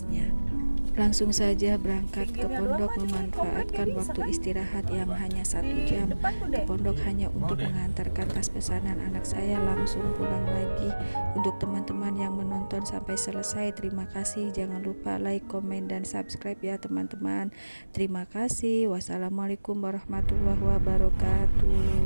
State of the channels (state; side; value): inverted; both; correlation -1.00